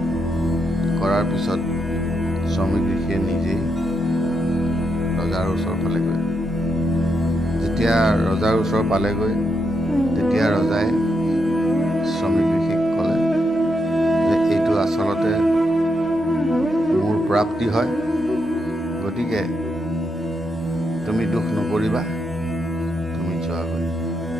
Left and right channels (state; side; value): normal; both; correlation 0.81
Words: কৰাৰ পিছত শ্ৰমিক ঋষিয়ে নিজেই ৰজাৰ ওচৰ পালেগৈ। যেতিয়া ৰজাৰ ওচৰ পালেগৈ, তেতিয়া ৰজাই শ্ৰমিক ঋষিক ক'লে যে এইটো আচলতে মোৰ প্ৰাপ্তি হয়, গতিকে তুমি দুখ নকৰিবা, তুমি যোৱাগৈ।